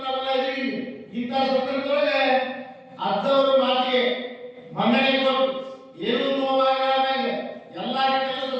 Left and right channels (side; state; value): both; identical; correlation 1.00